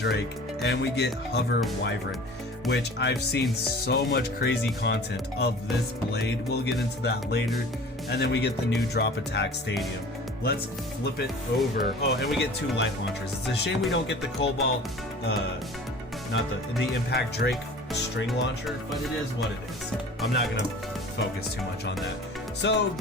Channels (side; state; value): both; normal; correlation 0.43